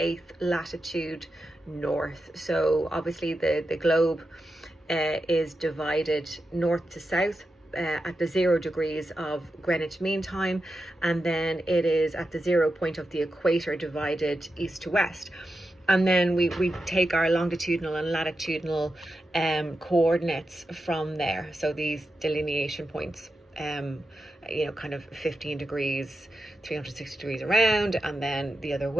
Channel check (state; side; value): normal; both; correlation 0.89